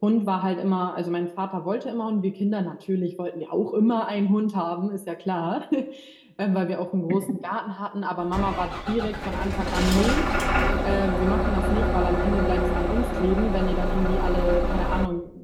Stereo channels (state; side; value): identical; both; correlation 1.00